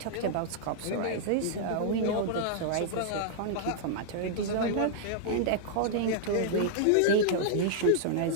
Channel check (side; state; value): both; different; correlation -0.01